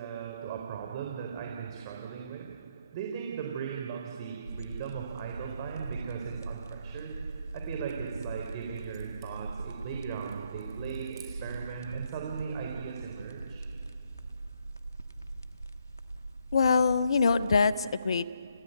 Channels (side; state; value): both; inverted; correlation -0.76